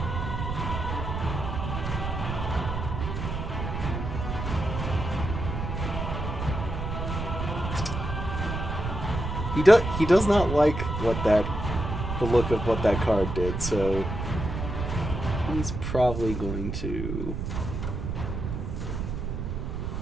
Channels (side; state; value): right; noise; rumble, 4 dB below the sound